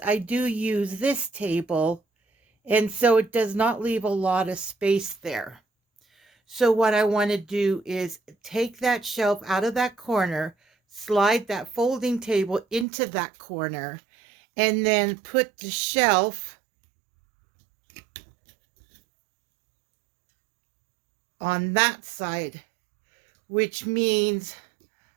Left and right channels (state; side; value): drops out; left; at 12.9 s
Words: I do use this table, and so it does not leave a lot of space there. So what I want to do is take that shelf out of that corner, slide that folding table into that corner, and then put the shelf on that side, which means